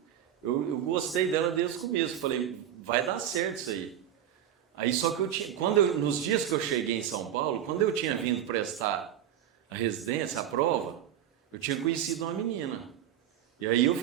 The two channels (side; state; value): left; quieter; 10.4 dB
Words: gostei dela desde o começo. Falei, vai dar certo isso aí. Aí só que eu tinha, nos dias que eu cheguei em São Paulo, quando eu tinha vindo prestar a residência, a prova, eu tinha conhecido uma menina. E aí eu